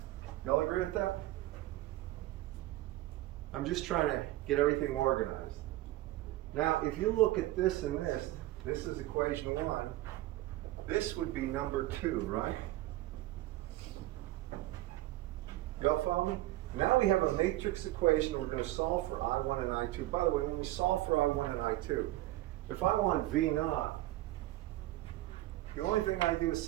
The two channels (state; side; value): quieter; left; 16.6 dB